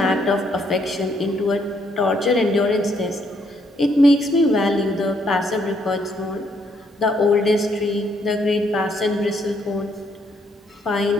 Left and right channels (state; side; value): normal; both; correlation 0.71